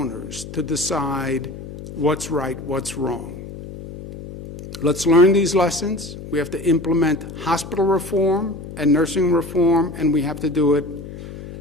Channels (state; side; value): noise; left; hum, 12 dB below the sound